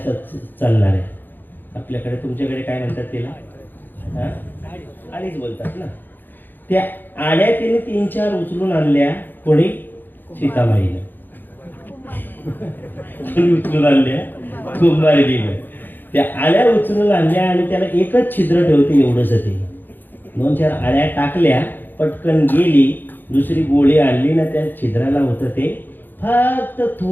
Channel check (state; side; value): late; right; 0.091 ms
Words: चालणाऱ्या. आपल्याकडे तुमच्याकडे काय म्हणतात तिला? हा? आळीच बोलतात ना. त्या आळ्या तिने 3-4 उचलून आणल्या. कोणी? सीतामाईनं. कोणी उचलून आणल्या? कुंभारिणीनं. त्या आळ्या उचलून आणल्या आणि त्याला एकच छिद्र ठेवते एवढंच. ते 2-4 आळ्या टाकल्या, पटकन गेली, दुसरी गोळी आणली ना, त्या छिद्राला होतं ते फक्त